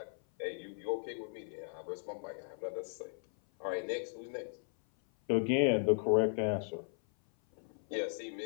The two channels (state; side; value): silent; right; 53 dB below the other